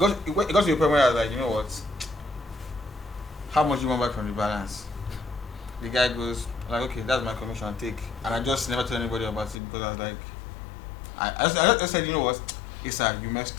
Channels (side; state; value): right; drops out; at 9.6 s